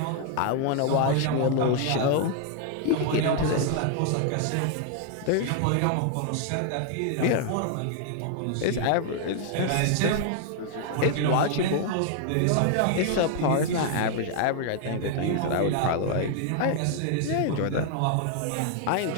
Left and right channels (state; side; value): different; both; correlation 0.00